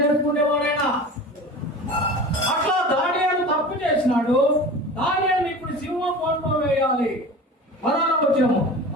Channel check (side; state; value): both; normal; correlation 0.36